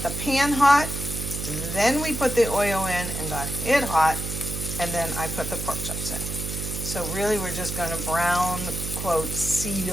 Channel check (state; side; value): noise; right; hum, 5 dB below the sound